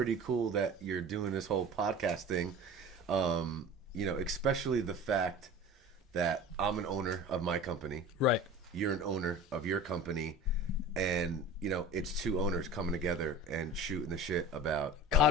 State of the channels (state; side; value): normal; both; correlation 0.38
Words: cool that you're doing this whole podcast thing. You know, especially the fact that I'm an owner of my company. Right. You're an owner of your company. And, you know, it's two owners coming together and shooting the shit about...